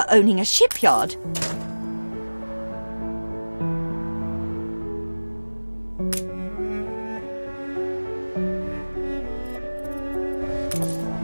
owning a shipyard.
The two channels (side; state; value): both; inverted; correlation -1.00